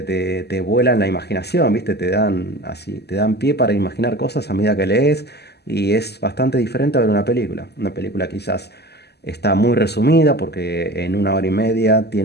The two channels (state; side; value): late; right; 0.48 ms